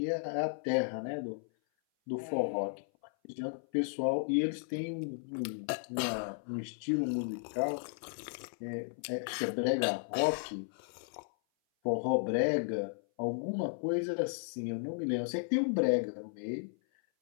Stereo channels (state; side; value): silent; right; 55 dB below the other